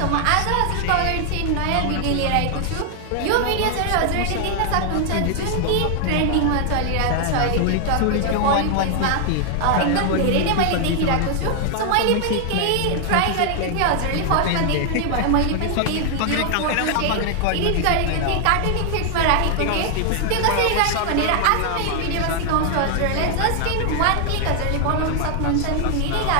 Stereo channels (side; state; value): both; different; correlation 0.00